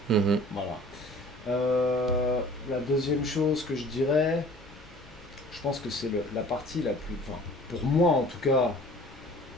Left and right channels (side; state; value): left; noise; rumble, 22 dB below the sound